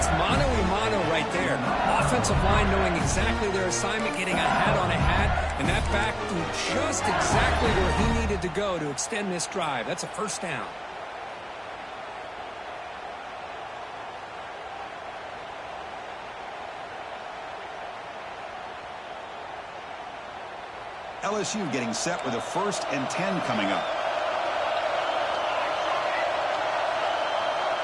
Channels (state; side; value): identical; both; correlation 1.00